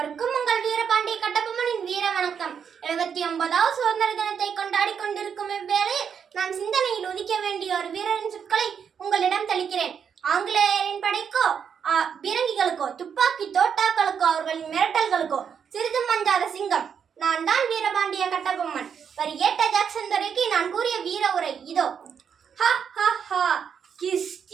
உங்கள் வீரபாண்டிய கட்டபொம்மனின் வீர வணக்கம். 79வது சுதந்திர தினத்தை கொண்டாடி கொண்டிருக்கும் இவ்வேளையில் நான் சிந்தனையில் உதிக்க வேண்டிய ஒரு வீரரின் சொற்களை உங்களிடம் தெளிக்கிறேன். ஆங்கிலேயரின் படைக்கோ பீரங்கிகளுக்கோ துப்பாக்கி தோட்டாக்களுக்கோ அவர்களின் மிரட்டல்களுக்கோ சிறிதும் மஞ்சாத சிங்கம் நான் தான் வீரபாண்டிய கட்டபொம்மன். வரி ஏட்ட ஜாக்சன் துரைக்கு நான் கூறிய வீர உரை இதோ.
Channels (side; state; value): left; quieter; 7.3 dB